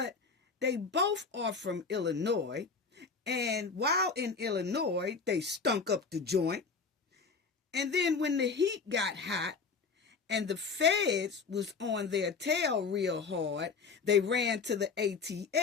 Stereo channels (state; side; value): quieter; right; 4.9 dB